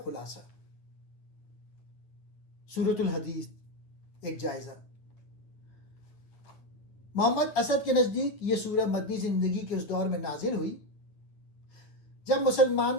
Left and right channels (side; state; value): right; late; 9.0 ms